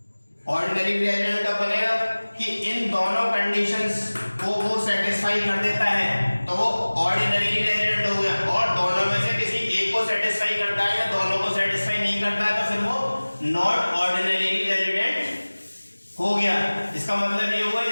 Ordinary resident कब बनेगा कि इन दोनों कंडीशंस को वो सेटिस्फाई कर देता है तो वो ऑर्डिनरी रेजिडेंट हो गया। और दोनों में से किसी एक को सेटिस्फाई करता है या दोनों को सेटिस्फाई नहीं करता है तो फिर वो नॉट ऑर्डिनरी रेजिडेंट इसका मतलब ये हुआ,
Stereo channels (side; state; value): both; inverted; correlation -1.00